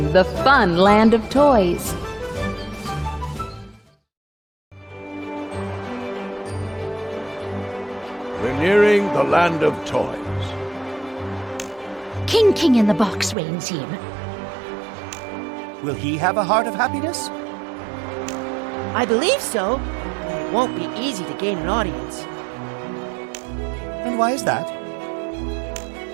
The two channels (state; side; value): drops out; left; at 13.4 s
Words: the fun land of toys. We're nearing the land of toys. King in the Box reigns here. Will he have a heart of happiness? I believe so. It won't be easy to gain an audience. And why is that?